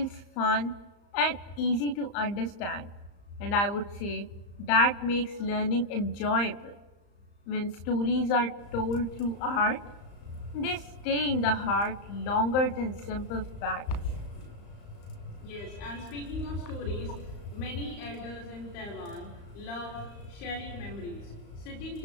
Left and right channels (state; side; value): late; right; 35 ms